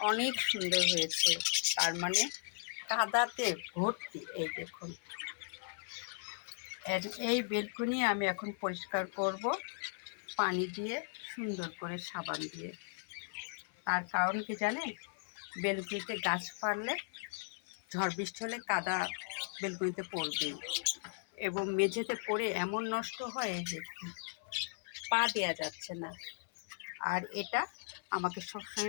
অনেক সুন্দর হয়েছে, তার মানে কাদাতে ভর্তি। এই দেখুন, এই বেলকনি আমি এখন পরিষ্কার করব পানি দিয়ে, সুন্দর করে সাবান দিয়ে। তার কারণ কি জানেন? বেলকুনিতে গাছ পারলে ঝড় বৃষ্টি হলে কাদা বেলকুনিতে পড়বে এবং মেঝেতে পড়ে এমন নষ্ট হয় যে পা দেওয়া যাচ্ছে না। আর এটা আমাকে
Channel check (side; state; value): right; silent; 53 dB below the other